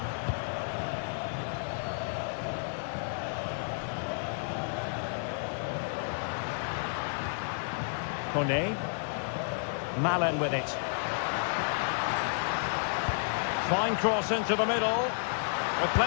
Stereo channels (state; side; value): silent; right; digital silence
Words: Kone. Malen with it. Fine cross into the middle, with